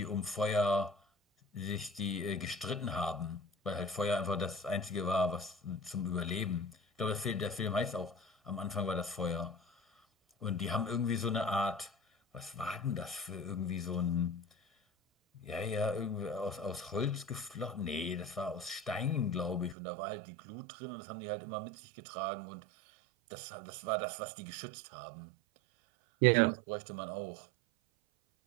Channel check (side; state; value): left; drops out; at 19.8 s